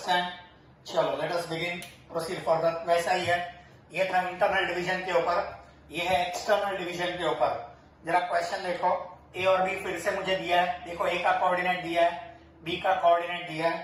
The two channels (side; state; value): both; identical; correlation 1.00